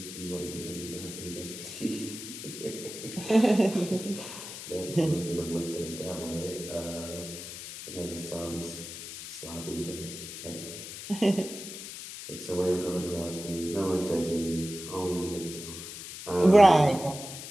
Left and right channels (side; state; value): left; noise; hiss, 10 dB below the sound